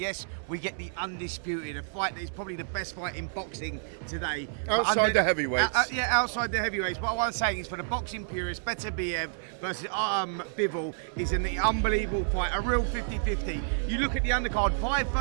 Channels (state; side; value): silent; left; digital silence